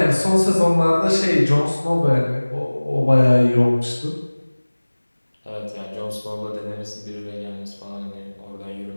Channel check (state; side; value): inverted; both; correlation -1.00